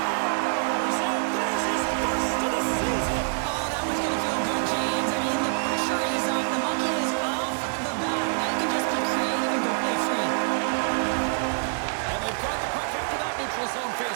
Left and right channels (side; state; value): left; silent; 61 dB below the other